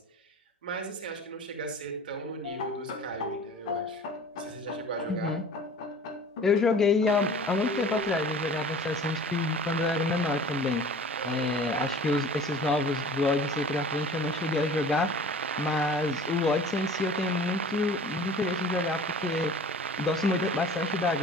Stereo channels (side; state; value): both; normal; correlation 0.43